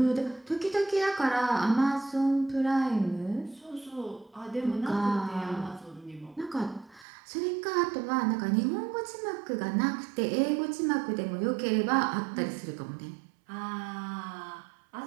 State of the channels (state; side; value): drops out; left; at 7.1 s